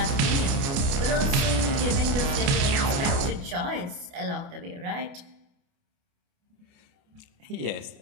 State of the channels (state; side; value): late; left; 29 ms